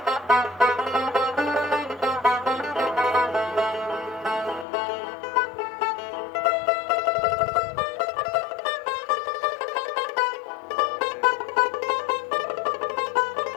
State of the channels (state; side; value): drops out; right; at 4.7 s